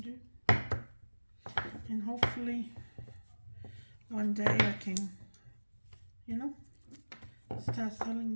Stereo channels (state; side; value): inverted; both; correlation -1.00